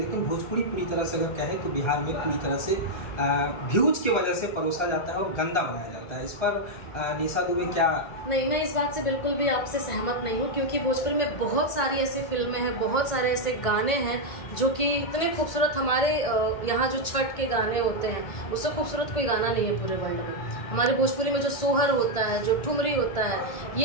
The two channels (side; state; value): right; late; 1.7 ms